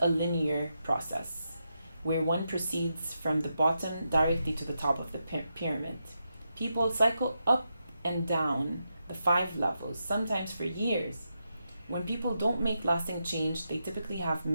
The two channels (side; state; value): both; inverted; correlation -0.85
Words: a linear process where one proceeds from the bottom directly to the top of the pyramid. People cycle up and down the 5 levels, sometimes for years. When people don't make lasting change, they typically have